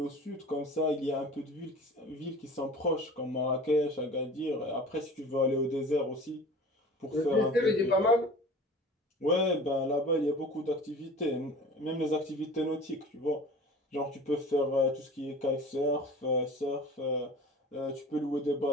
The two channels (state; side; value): normal; both; correlation 0.41